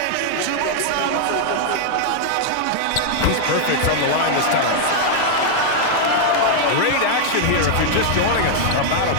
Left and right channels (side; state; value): both; different; correlation -0.01